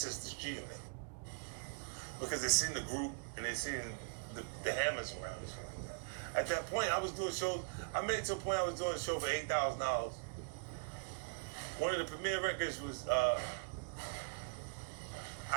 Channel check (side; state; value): left; quieter; 34.1 dB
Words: is, this G unit. Because they seen the group and they seen the hammers around and shit like that. At that point, I was doing shows. I made it to a point I was doing a show for $8,000. One of the premiere records was I